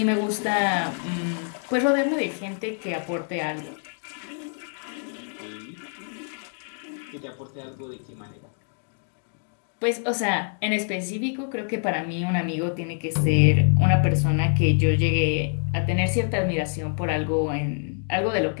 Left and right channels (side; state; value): right; silent; 58 dB below the other